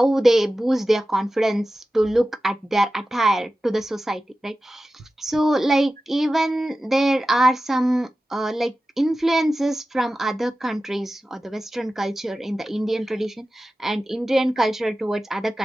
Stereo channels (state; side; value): normal; both; correlation 0.94